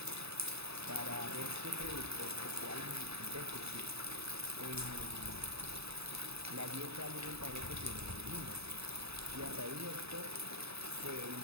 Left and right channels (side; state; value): left; late; 0.79 ms